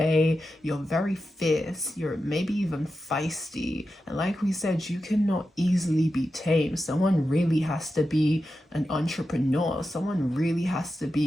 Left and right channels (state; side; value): normal; both; correlation 0.91